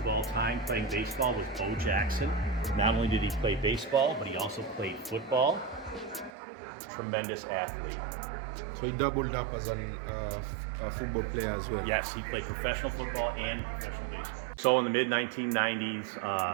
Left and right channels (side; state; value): left; drops out; at 6.3 s